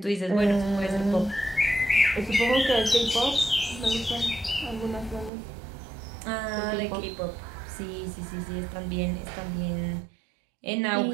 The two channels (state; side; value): drops out; left; at 5.3 s